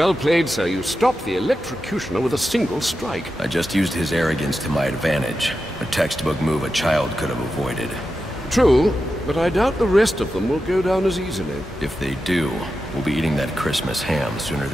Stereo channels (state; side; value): normal; both; correlation 0.90